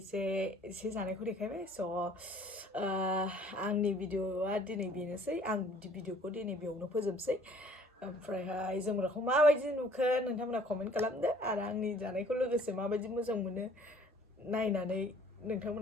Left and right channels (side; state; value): both; normal; correlation 0.56